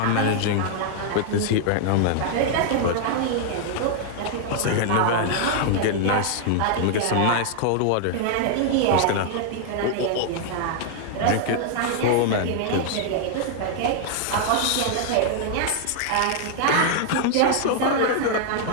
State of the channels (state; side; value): different; both; correlation 0.00